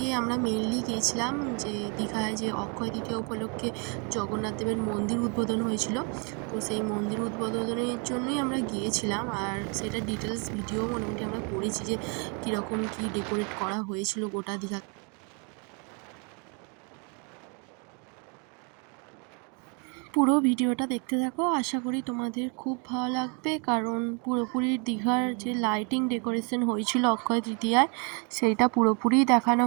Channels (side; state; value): left; quieter; 35.6 dB